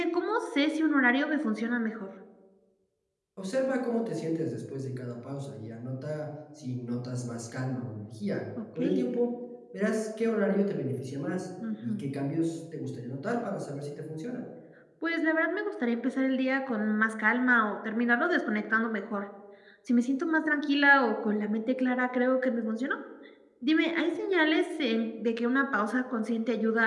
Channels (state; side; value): identical; both; correlation 1.00